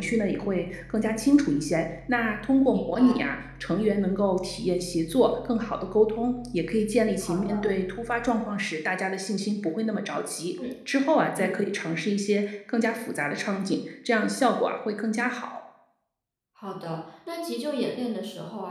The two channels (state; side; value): identical; both; correlation 1.00